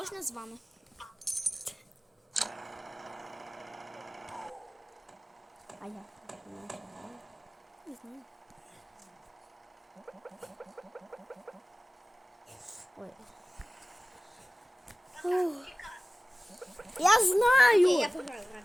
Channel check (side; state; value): both; normal; correlation 0.97